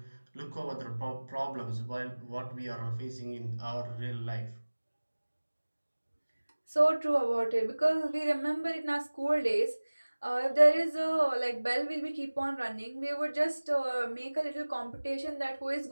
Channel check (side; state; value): both; inverted; correlation -1.00